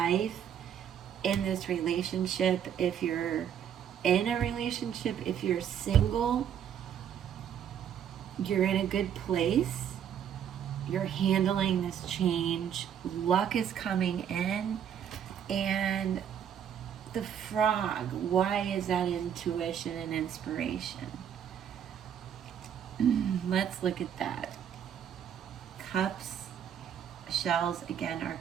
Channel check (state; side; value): quieter; left; 9.0 dB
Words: in this relationship. If you're in a relationship, if you're single, you're in a good place. You're handling this change. Luck is coming in. And the frog, why is that intuition and inspiration? Let's look at that. Cups, shells, again, are